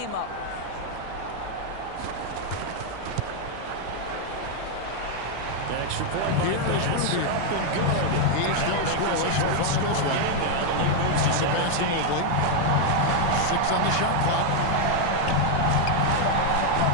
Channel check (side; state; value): both; different; correlation 0.01